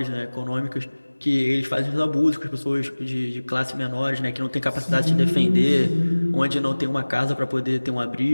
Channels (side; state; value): both; inverted; correlation -1.00